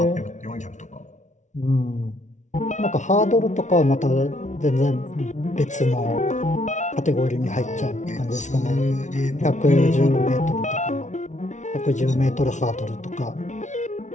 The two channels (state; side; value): late; right; 0.35 ms